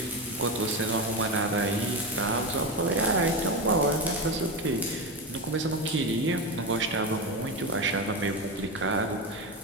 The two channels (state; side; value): normal; both; correlation 0.17